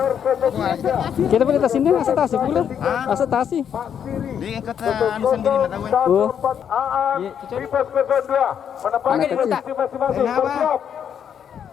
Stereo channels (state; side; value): quieter; right; 8.4 dB